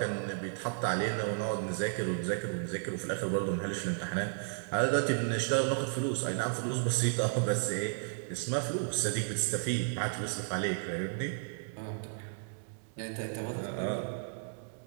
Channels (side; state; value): left; silent; digital silence